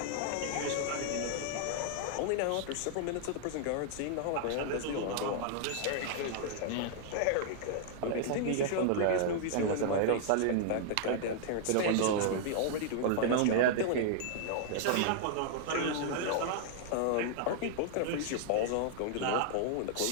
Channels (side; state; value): both; different; correlation -0.01